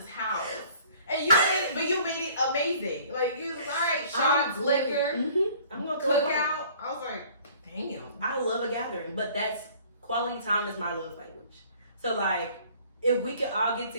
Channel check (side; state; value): both; inverted; correlation -0.53